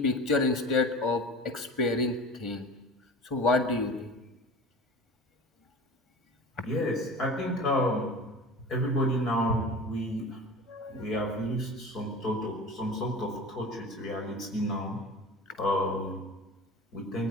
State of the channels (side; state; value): both; normal; correlation 0.36